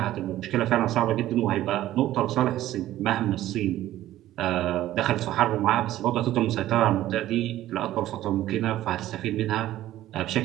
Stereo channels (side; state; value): left; quieter; 14.1 dB